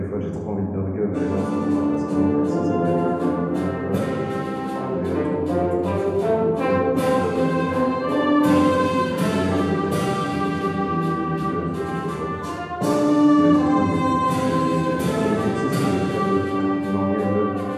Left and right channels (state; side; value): identical; both; correlation 1.00